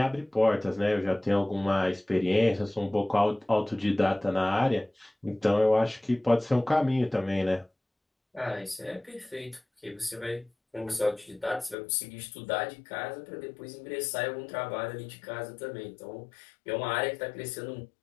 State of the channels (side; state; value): right; drops out; at 11.8 s